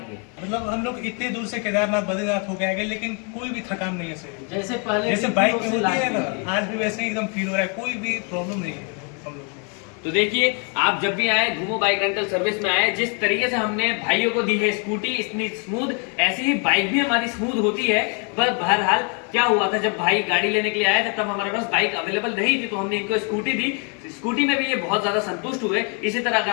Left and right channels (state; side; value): quieter; right; 36.6 dB